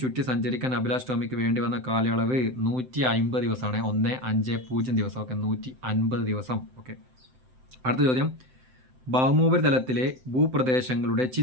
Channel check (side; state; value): left; late; 7.8 ms